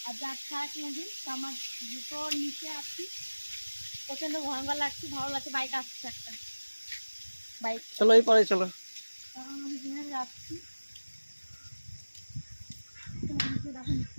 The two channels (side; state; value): both; inverted; correlation -1.00